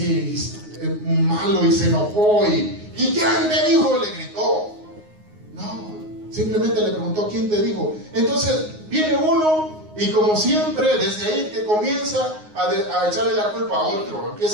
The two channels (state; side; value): late; left; 9.5 ms